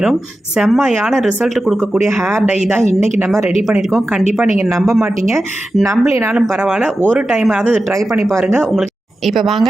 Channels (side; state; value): both; normal; correlation 0.92